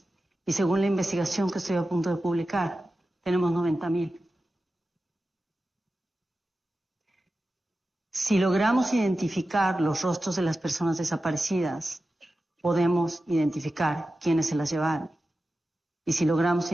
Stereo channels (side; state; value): both; normal; correlation 0.93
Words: Y según la investigación que estoy a punto de publicar, tenemos 90,000. Si logramos identificar los rostros de las personas desaparecidas, podemos identificar quiénes se las llevaron. Y si logramos